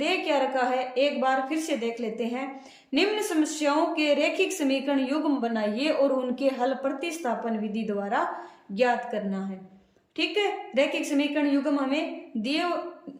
क्या रखा है, एक बार फिर से देख लेते हैं। निम्न समस्याओं के रैखिक समीकरण युग्म बनाइए और उनके हल प्रतिस्थापन विधि द्वारा ज्ञात करना है। ठीक है, रैखिक समीकरण युग्म हमें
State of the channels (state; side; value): identical; both; correlation 1.00